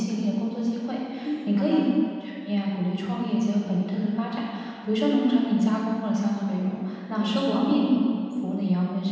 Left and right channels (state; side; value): identical; both; correlation 1.00